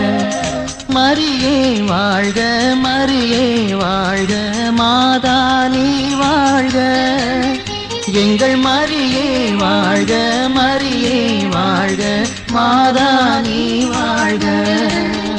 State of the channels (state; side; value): identical; both; correlation 1.00